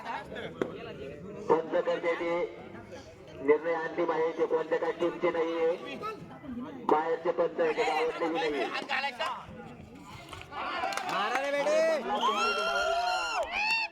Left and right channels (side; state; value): both; identical; correlation 1.00